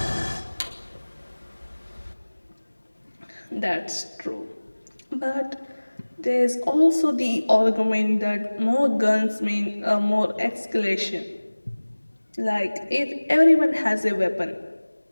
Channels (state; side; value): inverted; both; correlation -1.00